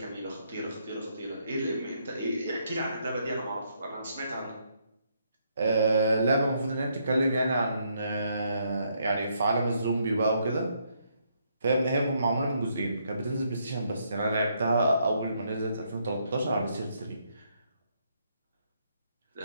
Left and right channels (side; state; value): both; inverted; correlation -0.74